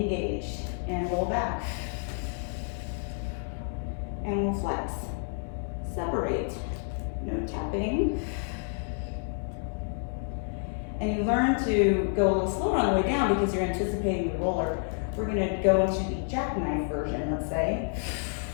and roll back. And we'll flex. Separate, no tapping. And you learn to go a little slower on the way down because you're anticipating the roller. We're gonna go into the jackknife version, let's say,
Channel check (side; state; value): right; silent; 56 dB below the other